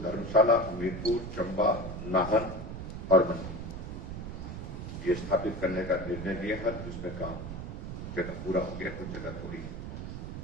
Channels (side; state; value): right; noise; rumble, 7 dB below the sound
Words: धर्मशाला, हमीरपुर, चंबा, नाहन और मंडी ये स्थापित करने का निर्णय लिया है, जिसमें काम जगह पूरा हो गया, कुछ जगह थोड़ी